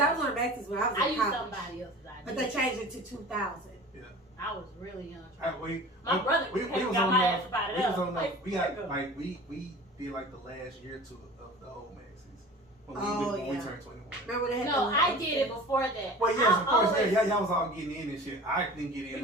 was on Max's when I was I in used college. somebody else's idea. But they changed it to 2000. Yeah. I was really young. My brother came got my ass about it up. Like, we got nigga. like we did like the last year or two of the old Maxis when Oh, we yeah. turned 21. Remember they had No, the I did it before that. Well, yes, of course, always- yeah, y'all was all getting in and shit. I didn't get in.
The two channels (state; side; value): normal; both; correlation 0.39